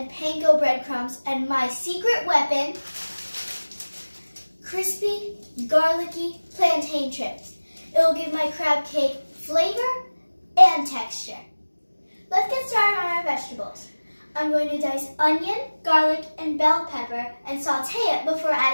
panko breadcrumbs and my secret weapon, crispy, garlicky plantain chips. It will give my crab cake flavor and texture. Let's get started on our vegetables. I'm going to dice onion, garlic, and bell pepper and saute it before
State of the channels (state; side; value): inverted; both; correlation -1.00